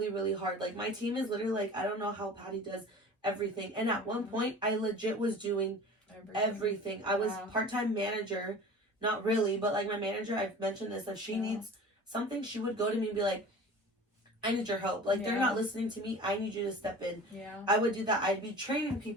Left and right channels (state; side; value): normal; both; correlation 0.40